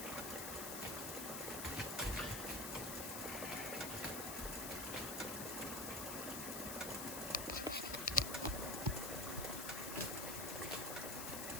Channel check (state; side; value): noise; left; hiss, 3 dB below the sound